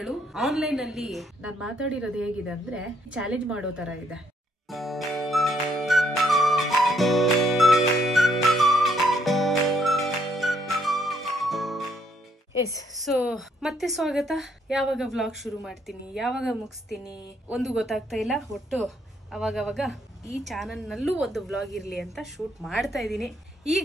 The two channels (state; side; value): normal; both; correlation 0.70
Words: ಆನ್ಲೈನ್ ಅಲ್ಲಿ ನಾನ್ ಮಾತಾಡಿರೋದು ಹೇಗಿದೆ ಅಂದ್ರೆ ಚಾಲೆಂಜ್ ಮಾಡೋ ತರ ಇದೆ. ಎಸ್, ಸೊ ಮತ್ತೆ ಸ್ವಾಗತ. ಯಾವಾಗ ವ್ಲಾಗ್ ಶುರು ಮಾಡ್ತೀನಿ, ಯಾವಾಗ ಮುಗಿಸ್ತೀನಿ ಒಂದು ಗೊತ್ತಾಗ್ತಾ ಇಲ್ಲ. ಒಟ್ಟು ಅವಾಗವಾಗ ಈ ಚಾನಲ್ ನಲ್ಲೂ ಒಂದು ವ್ಲಾಗ್ ಇರ್ಲಿ ಅಂತ ಶೂಟ್ ಮಾಡ್ತಾ ಇದ್ದೀನಿ.